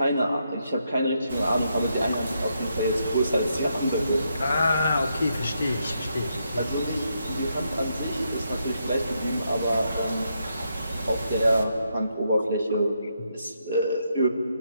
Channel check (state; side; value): inverted; both; correlation -0.80